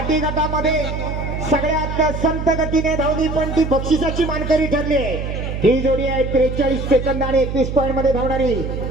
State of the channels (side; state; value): right; noise; hum, 5 dB below the sound